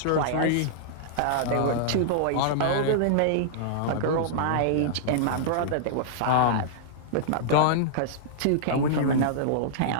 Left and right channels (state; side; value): different; both; correlation -0.02